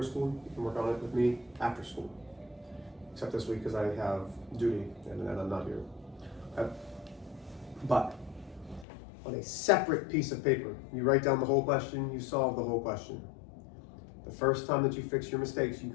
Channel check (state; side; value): drops out; right; at 8.8 s